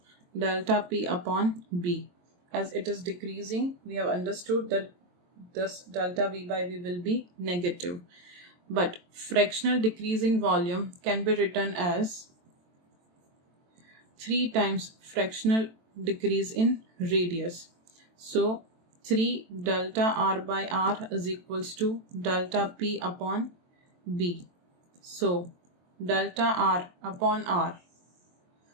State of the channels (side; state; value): left; late; 23 ms